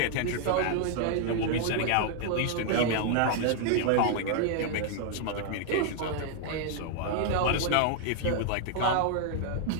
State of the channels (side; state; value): both; different; correlation 0.00